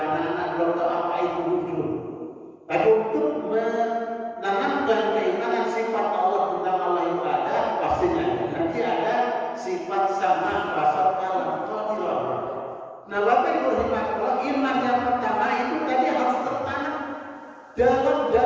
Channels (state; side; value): identical; both; correlation 1.00